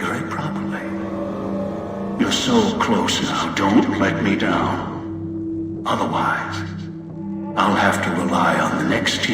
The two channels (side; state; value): both; identical; correlation 1.00